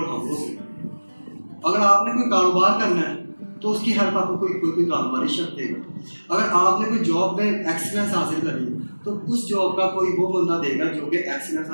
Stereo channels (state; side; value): inverted; both; correlation -1.00